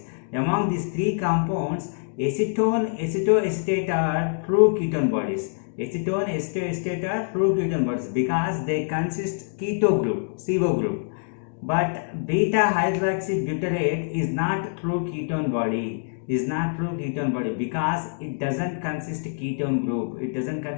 Among these three compounds, acetone, acetoacetate are true ketone bodies. Acetone, acetoacetate are true ketone bodies because they consist keto group, CO group. But beta hydroxybutyrate is not true ketone body. Because it doesn't consist ketone group. It doesn't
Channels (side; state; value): right; silent; digital silence